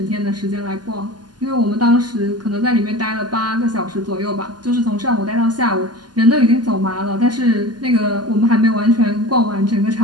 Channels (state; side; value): late; left; 0.70 ms